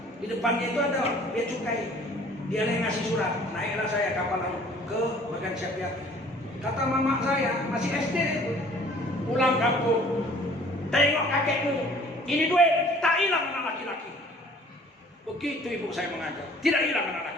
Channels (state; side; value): normal; both; correlation 0.53